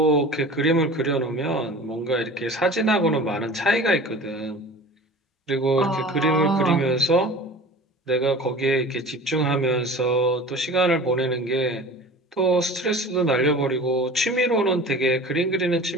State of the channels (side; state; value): both; normal; correlation 0.39